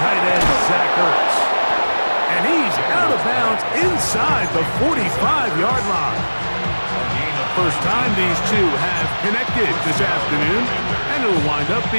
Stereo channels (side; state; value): both; inverted; correlation -1.00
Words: end, Zach Ertz. And he's out of bounds inside the 45-yard line. First time these two have connected this afternoon, and it'll wind up